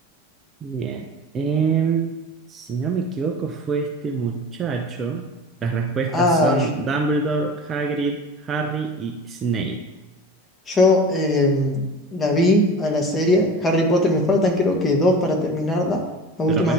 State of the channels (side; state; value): both; normal; correlation 0.36